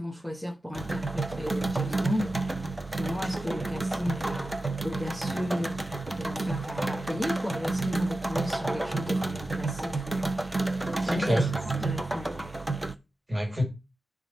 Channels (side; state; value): both; normal; correlation 0.93